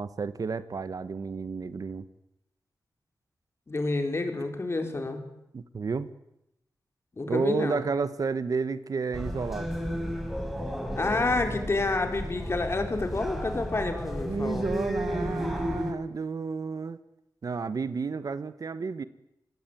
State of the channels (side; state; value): both; normal; correlation 0.80